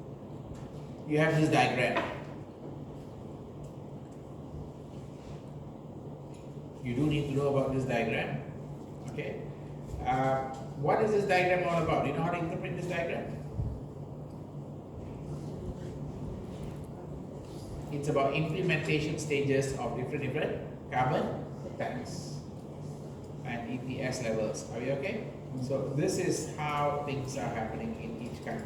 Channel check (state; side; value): identical; both; correlation 1.00